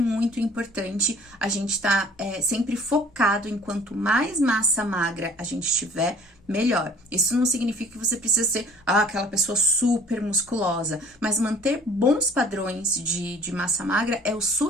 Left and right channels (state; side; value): normal; both; correlation 0.52